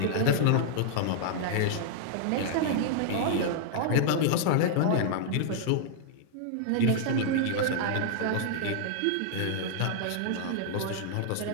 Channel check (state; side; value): different; both; correlation -0.01